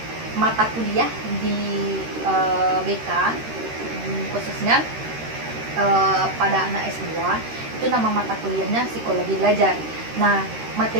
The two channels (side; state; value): left; late; 13 ms